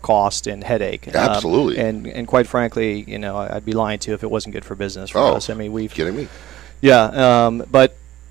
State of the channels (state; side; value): quieter; left; 14.6 dB